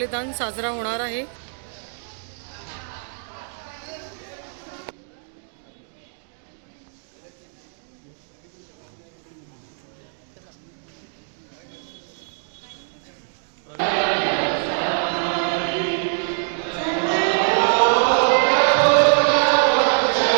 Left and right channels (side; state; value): left; silent; 60 dB below the other